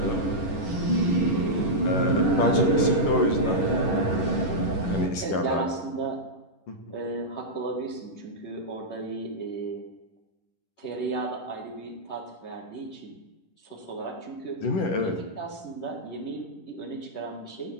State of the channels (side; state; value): right; late; 11 ms